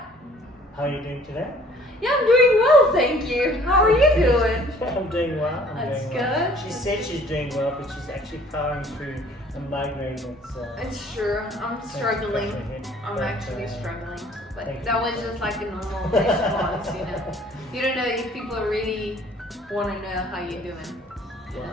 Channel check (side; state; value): both; normal; correlation 0.55